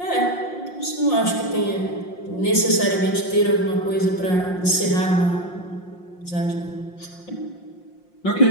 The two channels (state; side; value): late; right; 5.6 ms